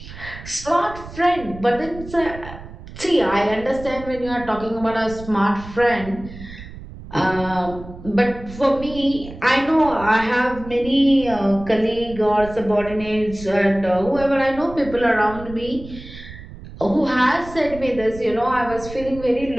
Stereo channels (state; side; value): noise; right; rumble, 14 dB below the sound